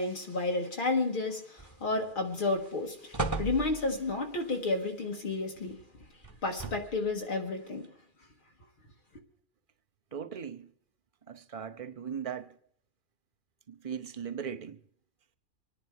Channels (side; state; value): right; late; 2.4 ms